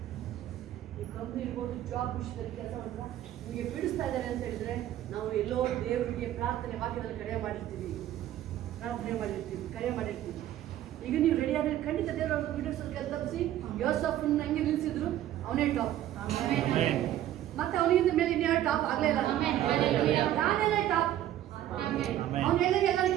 ಈ ಕಂಪ್ನಿ ಇರ್ಬೋದು, ಜಾಬ್ ವಿಷಯದಲ್ಲಿ ಕೆಲಸ ಮಾಡಿದ್ರೆ ನಿಮಗೆ ಪೀಡಿಸ್ತಾ ಇದ್ದಾರೆ ಅಂತ ಹೇಳಿದ್ರೆ ನಾವು ಎಲ್ಲೋ ದೇವರಿಗೆ ಪ್ರಾರ್ಥನೆ ವಾಕ್ಯದಲ್ಲಿ ಕರೆ ಮಾಡಿರ್ತೀವಿ, ಕರೆ ಮಾಡಿರ್ತೀವಿ. ಈಗ ನೀವು ರೆಡಿ ಆದರೆ ಖಂಡಿತ ದೇವರು ಅವ್ರು ಪೀಡಿಸೋದು ಕೆಲಸ ತಪ್ಪಿಸಿ ಯೋಸಫನ್ನ ಹಂಗೆ ನಿಲ್ಲಿಸಿದ್ರು, ಅವನೇ ಟಾಪ್. ಮತ್ತೆ ಅವನಿಗಿಂತ ಮೇಲೆ ಇನ್ಯಾರು ಟಾಪ್ ಆಗಲೇ ಇಲ್ಲ. ನಾನೆಲ್ಲ ಟಾಪ್. ಅವನು ಹೇಳಿದ್ರೆ ಎಲ್ಲರೂ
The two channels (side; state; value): left; quieter; 12.7 dB